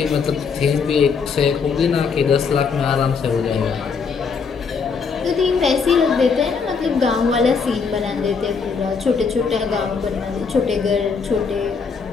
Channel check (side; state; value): right; quieter; 5.5 dB